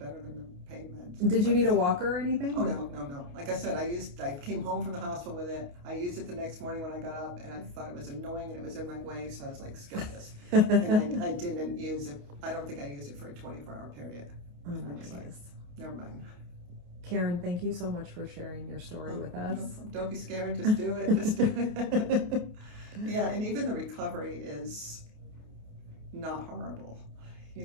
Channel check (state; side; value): late; left; 28 ms